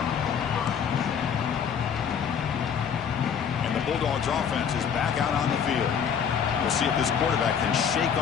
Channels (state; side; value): quieter; right; 7.4 dB